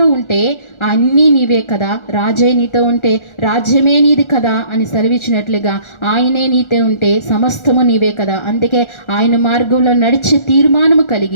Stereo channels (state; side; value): late; right; 1.4 ms